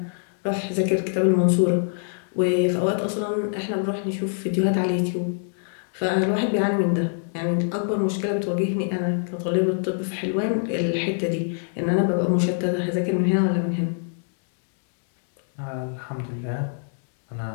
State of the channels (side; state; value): right; silent; digital silence